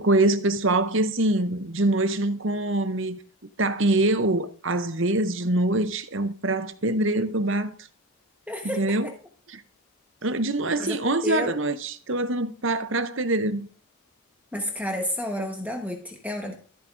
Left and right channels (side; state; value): both; normal; correlation 0.25